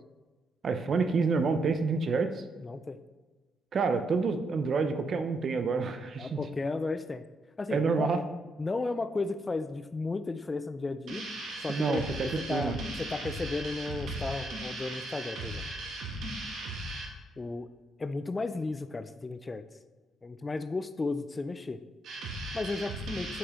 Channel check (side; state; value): both; normal; correlation 0.78